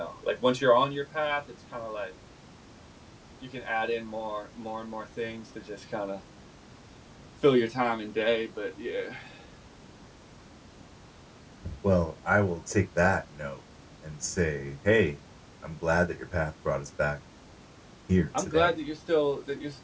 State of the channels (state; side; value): identical; both; correlation 1.00